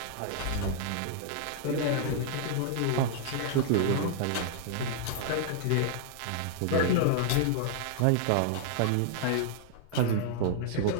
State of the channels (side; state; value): both; different; correlation -0.01